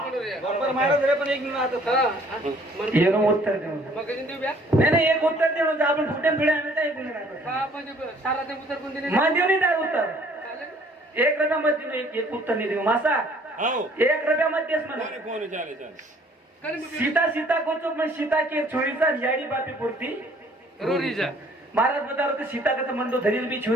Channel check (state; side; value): normal; both; correlation 0.58